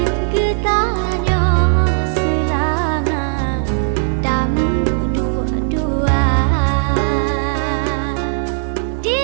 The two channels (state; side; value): silent; left; 62 dB below the other